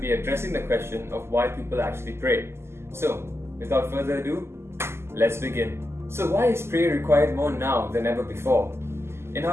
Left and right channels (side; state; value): left; late; 0.12 ms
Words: be addressing the question of why people actually pray. So, without further ado, let's begin. So why is prayer required more now than ever before? In